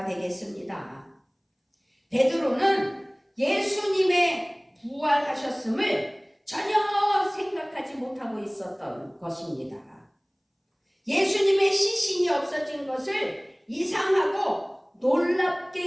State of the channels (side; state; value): both; identical; correlation 1.00